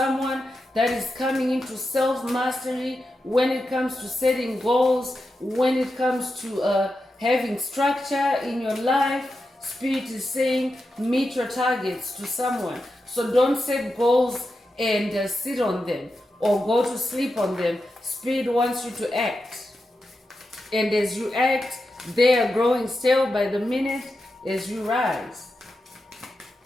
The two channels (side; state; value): both; normal; correlation 0.89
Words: that is coming into self-mastery when it comes to setting goals, when it comes to having structure in your life. Spirit is saying meet your targets to someone. So don't set goals and sit on them or go to sleep on them. Spirit wants you to act. And as you act, they are growing stale by the minute as you rise.